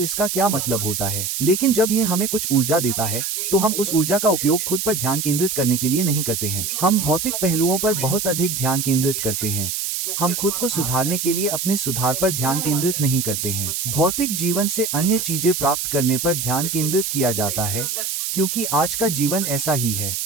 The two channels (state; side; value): noise; right; hiss, 2 dB below the sound